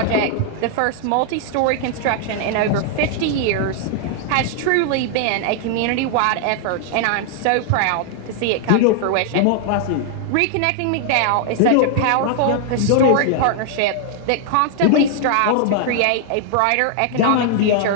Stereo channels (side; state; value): both; different; correlation 0.00